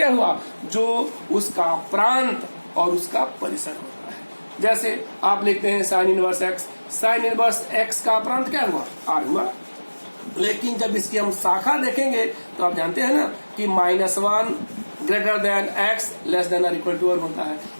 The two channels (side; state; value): both; inverted; correlation -1.00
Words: हुआ, जो उसका प्रांत और उसका परिसर होता है। जैसे आप लिखते हैं sign inverse x, sign inverse x का प्रांत क्या हुआ, आर हुआ। लेकिन जब इसकी हम शाखा देखेंगे तो आप जानते हैं ना कि -1 greater than x less than और इक्वल टू 1 होता है।